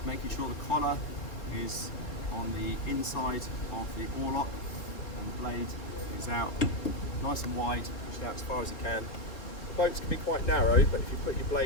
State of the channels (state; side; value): late; right; 3.9 ms